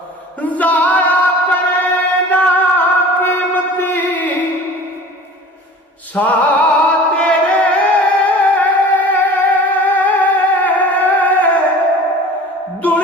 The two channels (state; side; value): normal; both; correlation 0.42